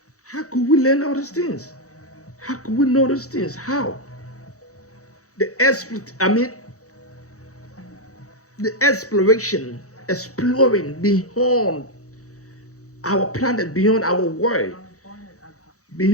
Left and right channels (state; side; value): late; right; 0.65 ms